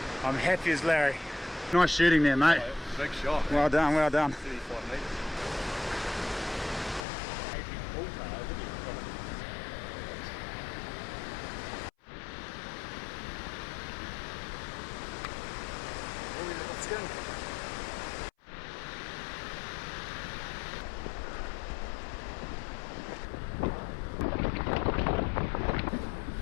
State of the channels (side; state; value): right; drops out; at 7.1 s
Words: I'm happy as Larry. Nice shooting there, mate. Big shot. Well done, well done. 35 metres.